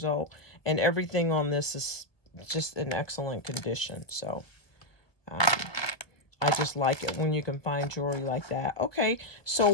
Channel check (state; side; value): late; right; 1.5 ms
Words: old. And everything on this is just in excellent condition. So I just like it when you can find jewelry like that. Okay, so